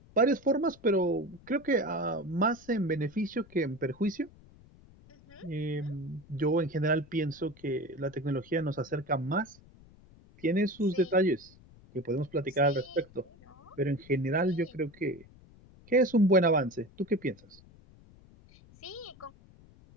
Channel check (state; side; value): noise; left; rumble, 24 dB below the sound